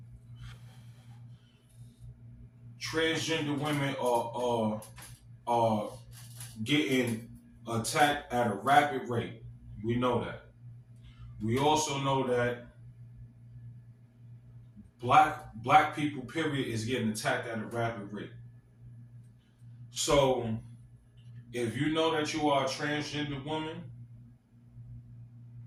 transgender women are getting attacked at a rapid rate. We know that. We also know that black people, period, is getting attacked at a rapid rate. So, if you know that you are a transgender woman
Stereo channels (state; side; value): identical; both; correlation 1.00